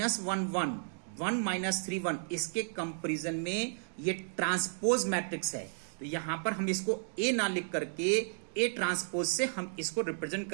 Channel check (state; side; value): silent; left; 56 dB below the other